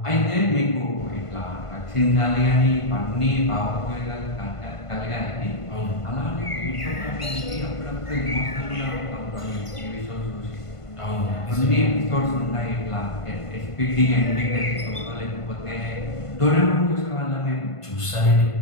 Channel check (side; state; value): right; late; 1.5 ms